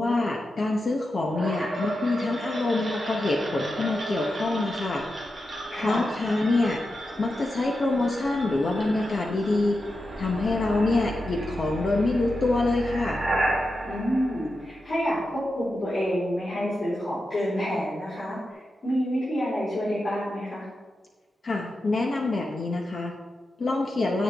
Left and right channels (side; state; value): both; normal; correlation 0.89